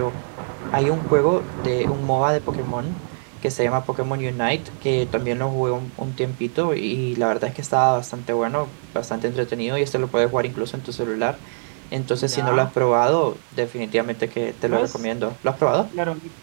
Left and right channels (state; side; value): silent; left; digital silence